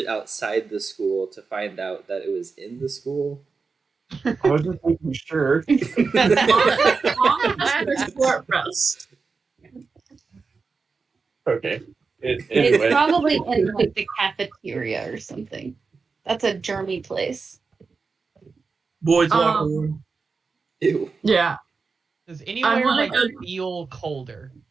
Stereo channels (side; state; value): left; quieter; 4.7 dB